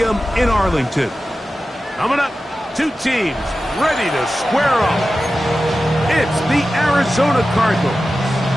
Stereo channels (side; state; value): both; normal; correlation 0.94